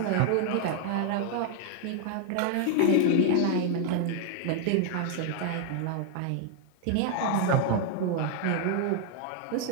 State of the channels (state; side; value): different; both; correlation 0.00